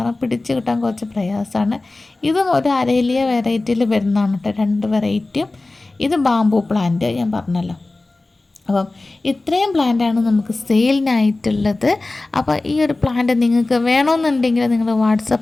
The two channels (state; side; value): quieter; right; 3.1 dB